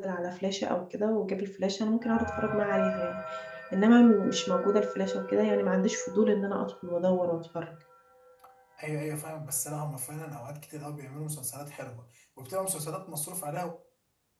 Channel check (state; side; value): identical; both; correlation 1.00